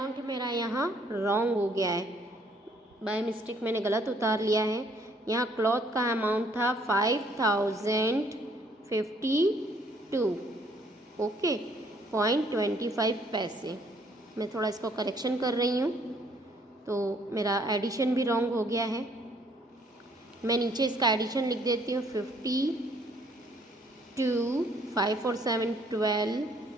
मेरा यहाँ रॉन्ग हो गया है, बाय मिस्टेक मैंने गलत उतार लिया है। यहाँ क्लॉथ का अमाउंट था 5052। ओके, 0.25 पैसे। मैं थोड़ा इसको करेक्शन कर रही हूँ, तो मेरा एडिशन भी रॉन्ग हो गया है। मैं नीचे इसका एडिशन लिख देती हूँ। 52, 5 और 7 12,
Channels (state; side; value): normal; both; correlation 0.64